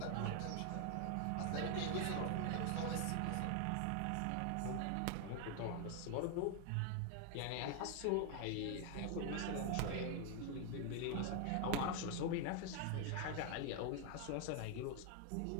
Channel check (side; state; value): both; different; correlation 0.00